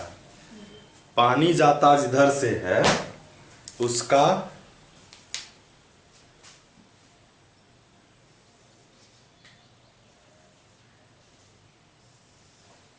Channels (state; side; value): identical; both; correlation 1.00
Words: पानी जाता जिधर से है उसका